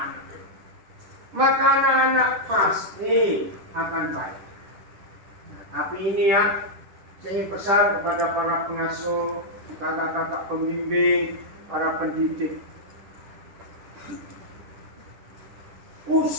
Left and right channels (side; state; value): left; late; 10 ms